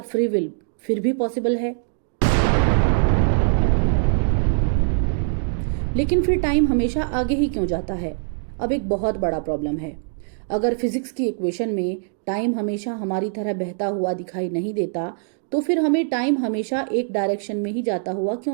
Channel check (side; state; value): left; silent; digital silence